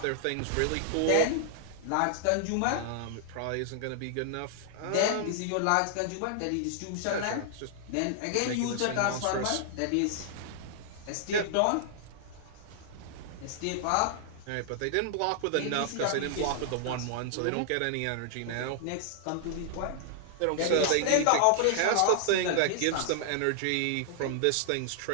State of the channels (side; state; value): both; different; correlation -0.01